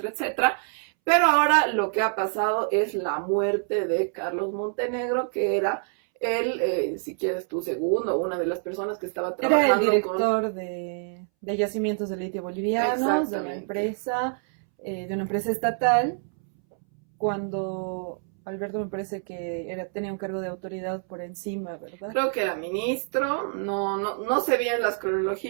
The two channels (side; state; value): left; silent; 61 dB below the other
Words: etcétera. Pero ahora lo que ha pasado es la muerte de Carlos Montenegro, que era él, si quieres tu segundo, una de las personas que estaba trabajando. Era el director de yacimientos de litio bolivianos, de una empresa estatal, cuando Alberto me parece que tenía un cargo de autoridad por encima, ¿verdad? Creo que era ministro, no sé bien las